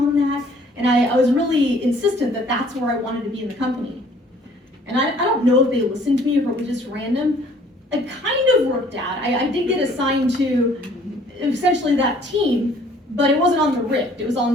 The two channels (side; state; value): both; normal; correlation 0.57